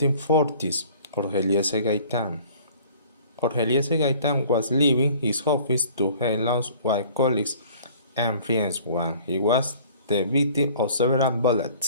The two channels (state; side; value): inverted; both; correlation -0.51